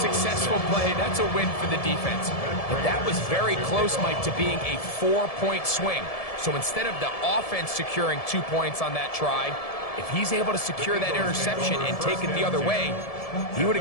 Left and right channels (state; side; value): late; right; 1.7 ms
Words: play. That's a win for the defense. But that was very close, Mike, to being a 4-point swing. So instead of the offense securing 2 points on that try, if he's able to secure that interception and take it the other way, he would